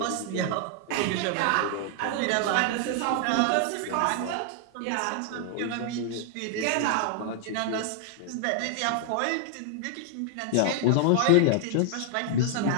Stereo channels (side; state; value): both; different; correlation 0.00